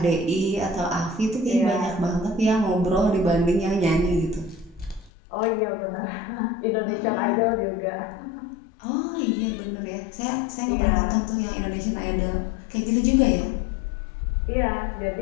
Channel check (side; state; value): right; drops out; at 5.1 s